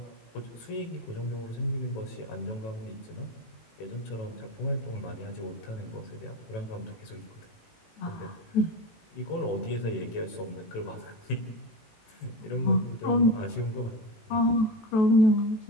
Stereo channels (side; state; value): right; late; 18 ms